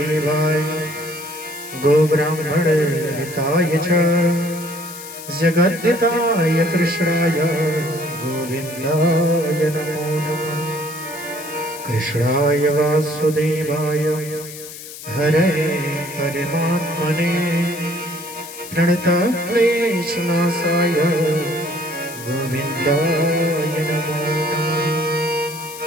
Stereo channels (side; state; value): left; noise; hiss, 13 dB below the sound